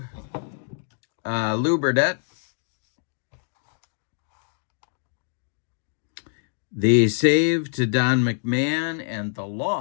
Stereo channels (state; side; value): silent; right; 61 dB below the other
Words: Lou Burdett. The save to Don McMahon, and the